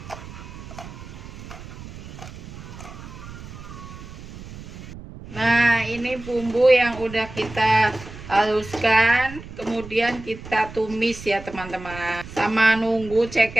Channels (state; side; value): noise; right; rumble, 14 dB below the sound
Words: Nah, ini bumbu yang udah kita haluskan, kemudian kita tumis ya teman-teman. Sama nunggu